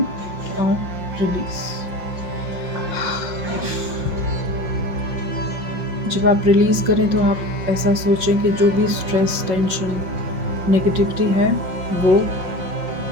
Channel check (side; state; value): left; late; 5.6 ms